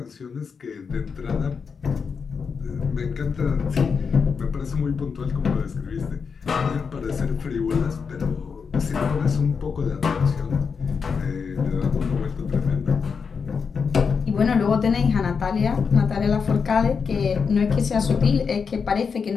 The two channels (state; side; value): quieter; right; 5.8 dB